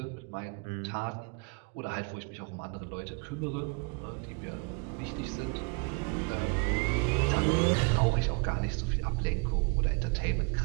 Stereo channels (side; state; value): left; quieter; 33.7 dB